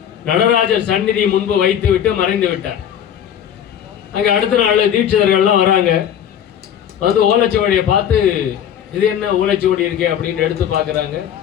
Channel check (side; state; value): right; quieter; 9.5 dB